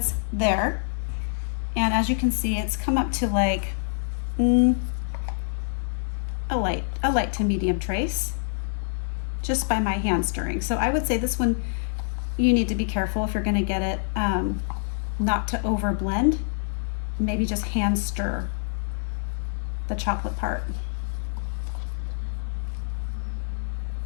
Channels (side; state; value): right; silent; digital silence